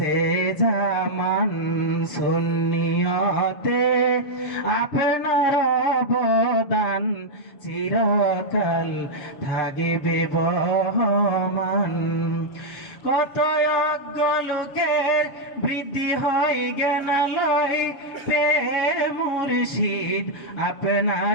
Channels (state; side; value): late; right; 7.2 ms